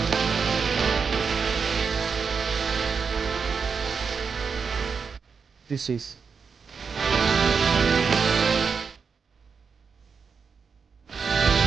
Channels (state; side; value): quieter; left; 5.7 dB